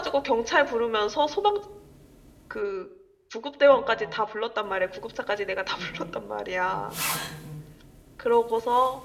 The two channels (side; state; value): both; identical; correlation 1.00